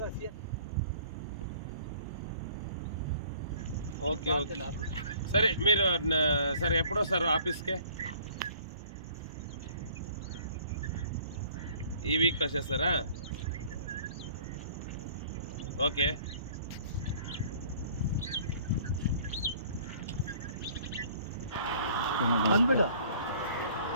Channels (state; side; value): inverted; both; correlation -0.54